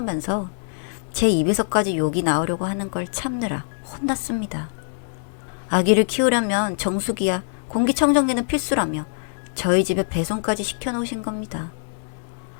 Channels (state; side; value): silent; right; digital silence